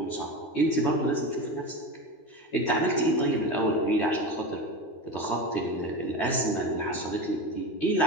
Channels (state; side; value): late; right; 13 ms